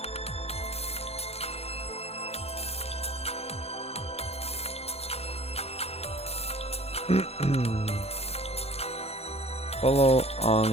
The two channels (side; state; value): right; late; 0.30 ms